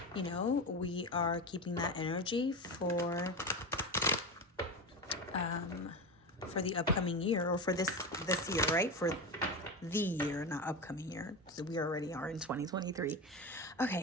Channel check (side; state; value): both; normal; correlation 0.21